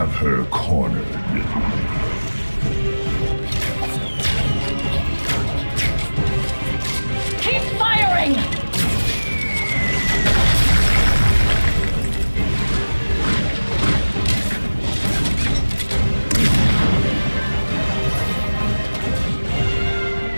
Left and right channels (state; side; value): inverted; both; correlation -1.00